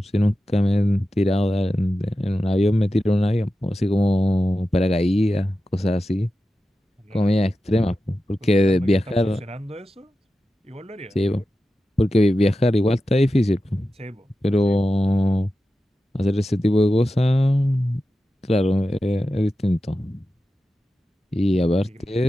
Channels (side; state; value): both; normal; correlation 0.92